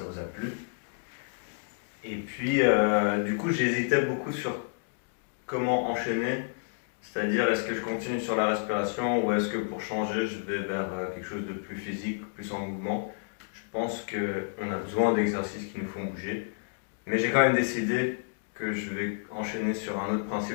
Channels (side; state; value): right; silent; digital silence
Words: vous a plu. Et puis, du coup, j'hésitais beaucoup sur comment enchaîner, c'est-à-dire est-ce que je continue sur la respiration ou est-ce que pour changer, je vais vers quelque chose de plus physique, plus en mouvement. Je pense qu'on a besoin d'exercices qui nous font bouger, mais j'ai quand même décidé que je vais enchaîner sur un autre